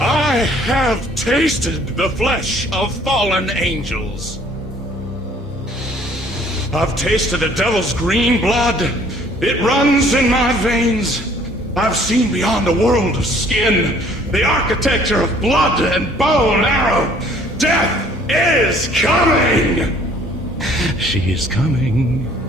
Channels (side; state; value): both; normal; correlation 0.58